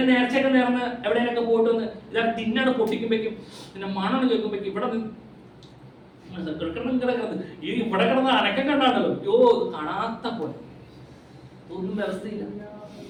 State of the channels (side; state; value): both; identical; correlation 1.00